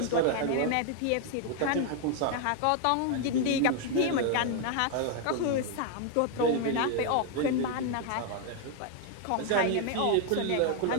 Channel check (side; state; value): both; different; correlation 0.00